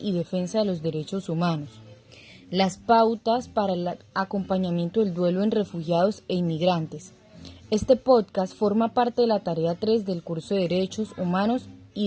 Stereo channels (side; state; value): both; identical; correlation 1.00